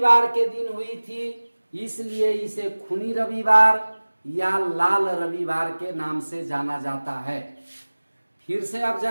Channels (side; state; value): both; inverted; correlation -1.00